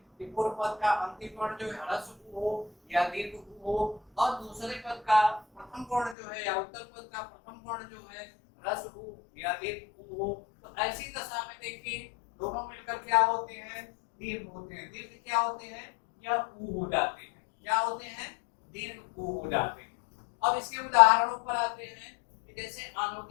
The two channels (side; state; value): right; drops out; at 6.2 s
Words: कि पूर्व पद का अंतिम वर्ण जो है ह्रस्व उ हो या दीर्घ उ हो, और दूसरे पद का प्रथम वर्ण जो है या उत्तर पद का प्रथम वर्ण जो है ह्रस्व उ या दीर्घ उ हो। तो ऐसी दशा में देखिए दोनों मिलकर क्या होते हैं? दीर्घ होते हैं। दीर्घ क्या होते हैं? या उ हो जाते हैं। क्या होते हैं? दीर्घ उ हो जाते हैं। अब इसके उदाहरणों पर आते हैं कि जैसे